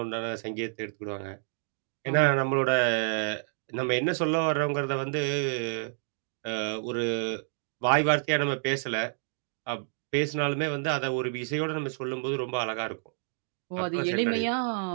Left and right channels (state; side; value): silent; left; digital silence